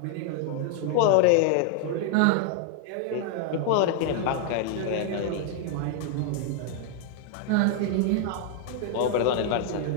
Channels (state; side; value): different; both; correlation 0.00